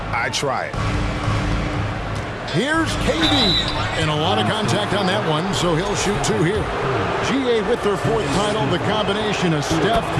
I try it. Here's KD. And a lot of contact on that one, so he'll shoot 2 here. GA with their 4th title, the combination of Steph,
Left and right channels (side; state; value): both; identical; correlation 1.00